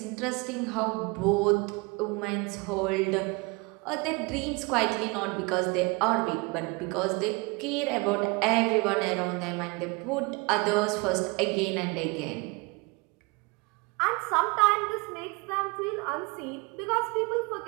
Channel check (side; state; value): left; quieter; 28.0 dB